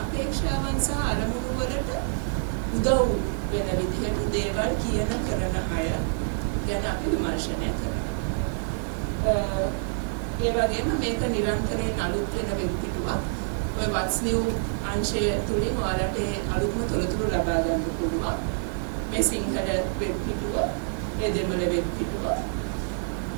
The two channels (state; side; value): silent; left; 60 dB below the other